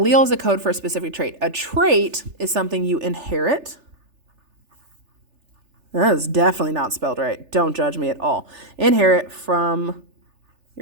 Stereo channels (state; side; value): late; left; 3.4 ms